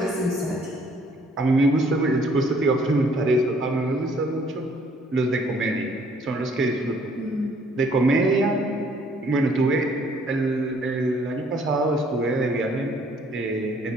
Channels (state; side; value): normal; both; correlation 0.62